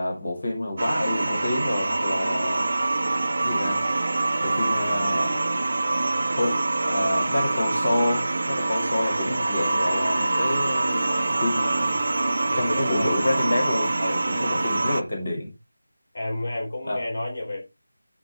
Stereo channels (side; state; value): both; inverted; correlation -0.96